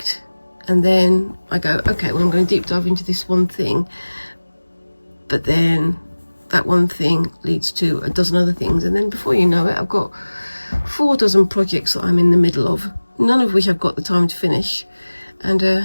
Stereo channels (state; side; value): inverted; both; correlation -1.00